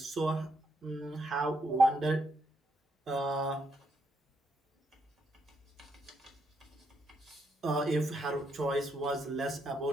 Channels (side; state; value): both; normal; correlation 0.77